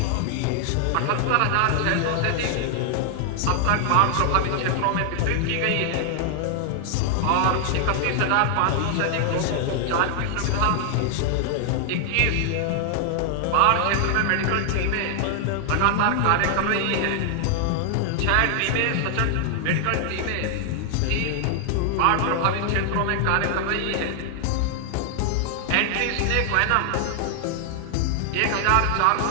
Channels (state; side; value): different; both; correlation 0.00